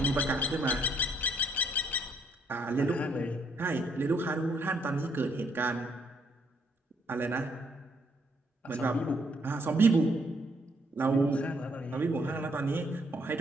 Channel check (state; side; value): normal; both; correlation 0.70